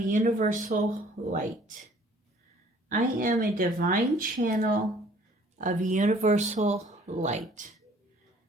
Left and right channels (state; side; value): normal; both; correlation 0.56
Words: light. I am a divine channel of universal light.